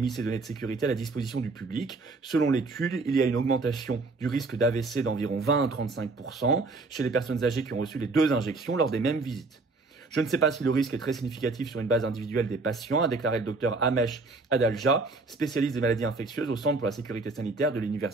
ces données de sécurité à la disposition du public. Selon l'étude, il y a une augmentation du risque d'AVC d'environ 20 à 35% chez les personnes âgées qui ont reçu les 2 injections lors des mêmes visites. Je ne sais pas si le risque est très significatif sur une base individuelle des patients, a déclaré le docteur Amesh Adalja, spécialiste des maladies infectieuses au Centre pour la sécurité sanitaire de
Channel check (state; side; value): quieter; left; 3.6 dB